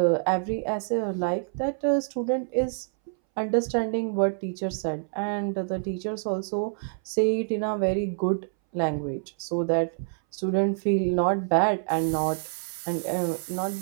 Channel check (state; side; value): silent; left; 60 dB below the other